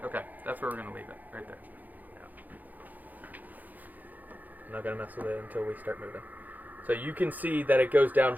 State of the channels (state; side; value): late; left; 0.082 ms